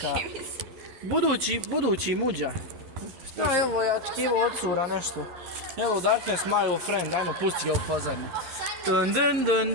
Budući muđa. Šta je ovo, ja očekivao od cura nešto. Hello Darkness, my old friend, ajmo pusti ga u pozadnju. Dun.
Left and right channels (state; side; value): late; left; 11 ms